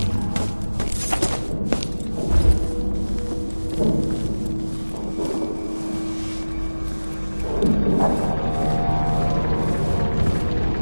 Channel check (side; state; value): both; inverted; correlation -1.00